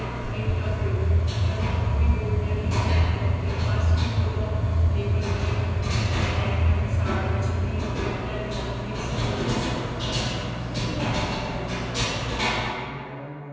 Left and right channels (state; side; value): identical; both; correlation 1.00